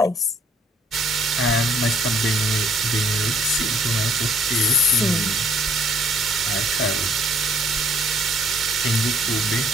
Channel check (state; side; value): normal; both; correlation 0.61